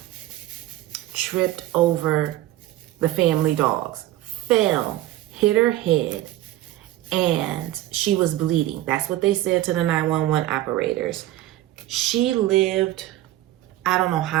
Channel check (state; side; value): quieter; left; 15.1 dB